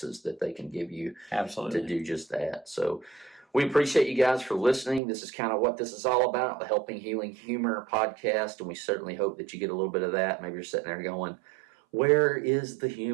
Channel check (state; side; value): drops out; left; at 5.0 s